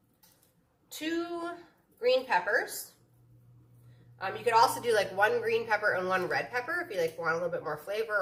2 green peppers. You could also do like 1 green pepper and 1 red pepper if you like want a little bit more flavor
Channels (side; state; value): both; identical; correlation 1.00